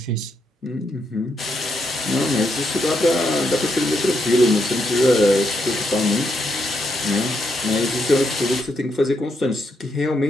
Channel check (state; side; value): normal; both; correlation 0.79